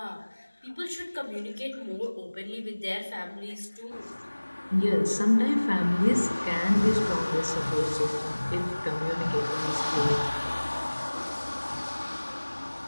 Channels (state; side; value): inverted; both; correlation -1.00